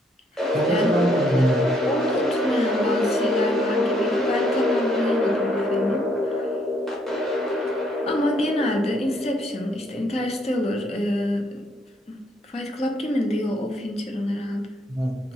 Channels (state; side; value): normal; both; correlation 0.70